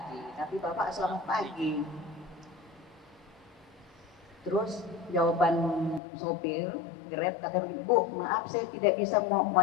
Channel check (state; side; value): drops out; right; at 6.0 s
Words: tapi Bapak selamat pagi." Terus jawaban sopir Grab kata, "Bu, maaf saya tidak bisa mau